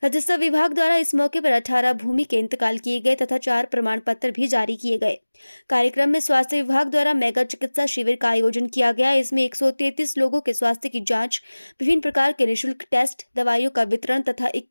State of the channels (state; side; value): inverted; both; correlation -1.00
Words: राजस्व विभाग द्वारा इस मौके पर 18 भूमि के इंतकाल किए गए तथा 4 प्रमाण पत्र भी जारी किए गए। कार्यक्रम में स्वास्थ्य विभाग द्वारा मेगा चिकित्सा शिविर का आयोजन किया गया। इसमें 133 लोगों के स्वास्थ्य की जांच, विभिन्न प्रकार के निःशुल्क टेस्ट, दवाइयों का वितरण तथा